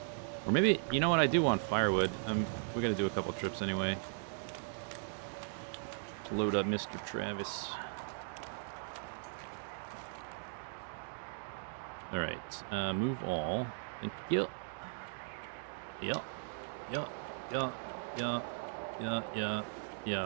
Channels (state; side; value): silent; left; digital silence